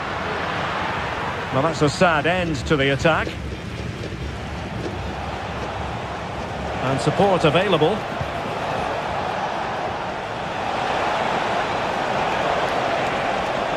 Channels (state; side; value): identical; both; correlation 1.00